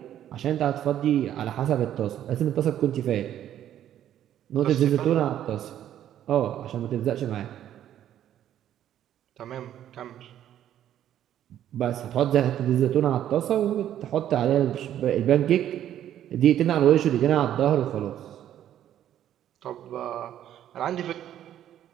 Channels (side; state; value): left; quieter; 11.1 dB